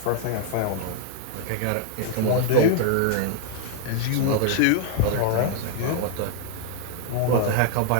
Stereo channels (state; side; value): different; both; correlation 0.00